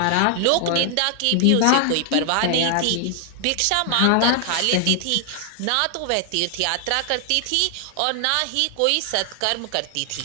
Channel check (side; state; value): both; different; correlation 0.00